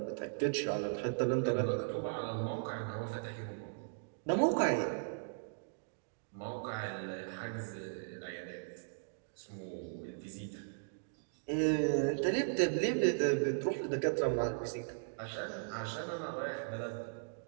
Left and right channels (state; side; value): silent; left; digital silence